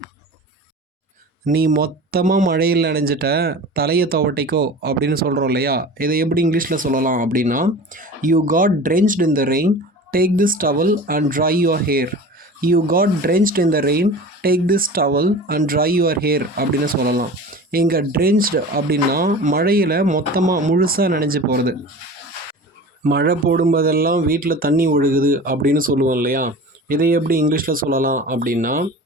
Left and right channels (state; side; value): normal; both; correlation 0.36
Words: நீ மொத்தமாக மழையில் நனைஞ்சிட்ட, தலையை துவட்டிக்கோ அப்படின்னு சொல்கிறோம் இல்லையா? இதை எப்படி இங்கிலீஷில் சொல்லலாம் அப்படின்னா, you got drenched in the rain, take this towel and dry your hair. You got drenched in the rain, take this towel and dry your hair அப்படின்னு சொல்லலாம். இங்கே ட்ரென்ச்டு அப்படின்னா மழையில் மொத்தமாக முழுசாக நனைஞ்சு போகிறது. மழை போடும்போதெல்லாம் வீட்டில் தண்ணி ஒழுகுது அப்படின்னு சொல்லுவோம் இல்லையா? இதை எப்படி இங்கிலீஷில் சொல்லலாம் அப்படின்னா,